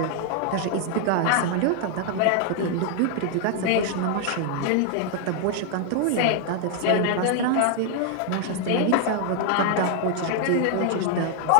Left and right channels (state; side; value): different; both; correlation 0.00